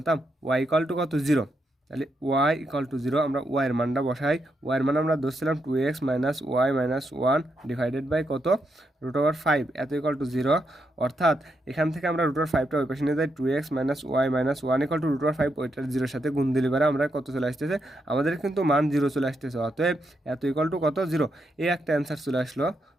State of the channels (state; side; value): normal; both; correlation 0.81